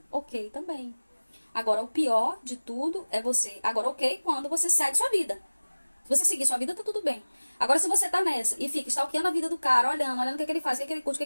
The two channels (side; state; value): both; inverted; correlation -1.00